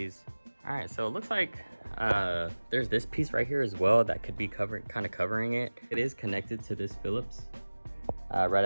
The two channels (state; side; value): inverted; both; correlation -1.00